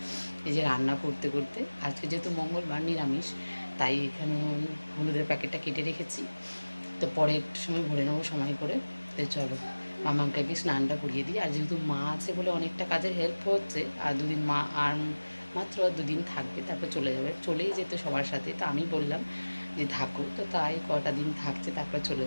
এই যে রান্না করতে করতে, আজকে যেহেতু মঙ্গলবার নিরামিষ, তাই এখানে আমি হলুদের প্যাকেটটা কেটে রেখেছি। তো পরে একটু সময় ভরে নেবো সময় করে। তো চলো মামাকে আগে স্নানটা করিয়ে দিই। আর যেহেতু মা আছে বলে অনেকটা কাজের হেল্প হচ্ছে। আর দুদিন মা আর মাত্র 2 দিন থাকবে, তারপর চলে যাবে, চলেই যেত সবার সাথে। তো আমি বললাম যে থাকো, তো তাই কটা দিন থাকছে, তারপর চলে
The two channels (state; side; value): inverted; both; correlation -1.00